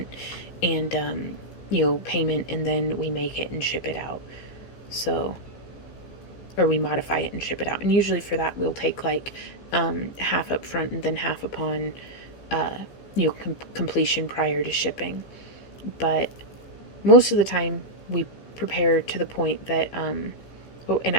and you know, payment, and then we make it and ship it out. So, or we modify it and ship it out, and usually for that we'll take like half up front and then half upon completion prior to shipping. But most of the time we prepare to the point that oh, and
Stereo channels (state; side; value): late; right; 15 ms